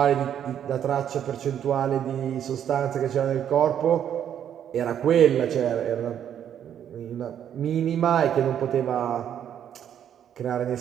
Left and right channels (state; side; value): quieter; left; 9.6 dB